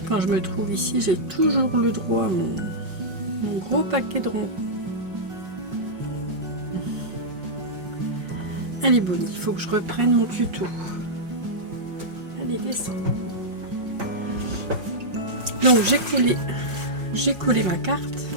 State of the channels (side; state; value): left; late; 5.5 ms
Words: quand je me trouve ici, j'ai toujours le droit à mon gros paquet de ronrons. Allez, Bonnie, il faut que je reprenne mon tuto. Allez, descends. Donc j'ai collé ma carte,